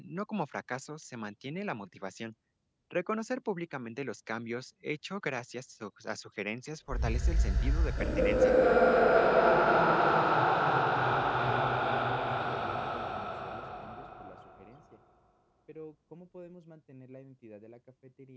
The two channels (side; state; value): both; identical; correlation 1.00